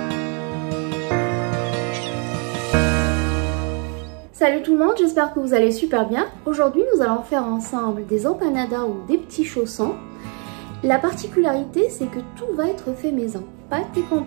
Salut tout le monde, j'espère que vous allez super bien. Aujourd'hui, nous allons faire ensemble des empanadas ou des petits chaussons. La particularité, c'est que tout va être fait maison, pâte et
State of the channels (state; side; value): quieter; left; 37.0 dB